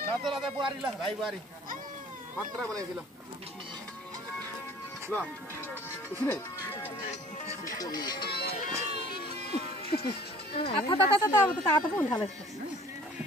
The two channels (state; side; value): normal; both; correlation 0.51